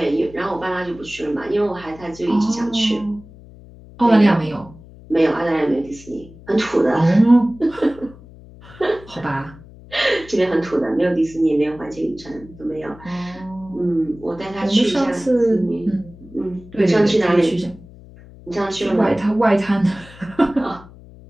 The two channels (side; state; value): left; noise; hum, 20 dB below the sound